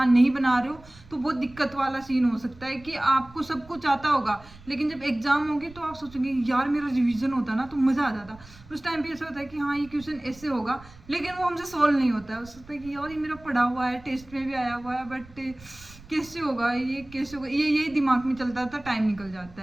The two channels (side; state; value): right; noise; rumble, 22 dB below the sound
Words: नहीं बना रहे हो तो बहुत दिक्कत वाला सीन हो सकता है कि आपको सब कुछ आता होगा लेकिन जब एग्जाम होगी तो आप सोचेंगे यार मेरा रिवीजन होता ना तो मज़ा आ जाता। उस टाइम पे ऐसा होता है कि हाँ ये क्वेश्चन ऐसे होगा लेकिन वो हमसे सॉल्व नहीं होता है, हो सकता है कि यार ये मेरा पढ़ा हुआ है, टेस्ट में भी आया हुआ है, बट कैसे होगा, ये कैसे होगा, ये यही दिमाग में चलता था, टाइम निकल